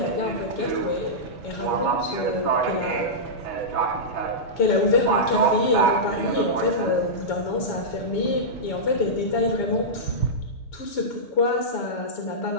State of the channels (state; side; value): late; right; 7.2 ms